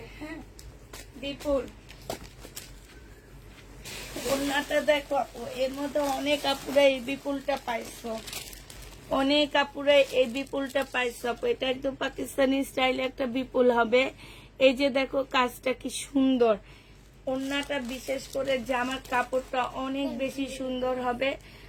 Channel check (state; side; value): identical; both; correlation 1.00